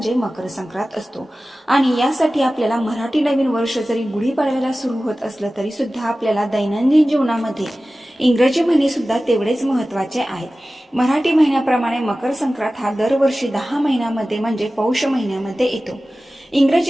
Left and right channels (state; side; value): normal; both; correlation 0.96